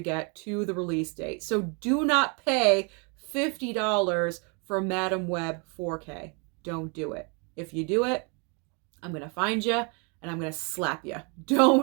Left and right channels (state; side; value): quieter; left; 34.4 dB